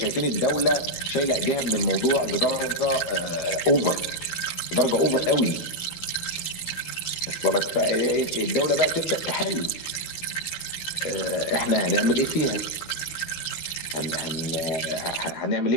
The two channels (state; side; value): late; right; 12 ms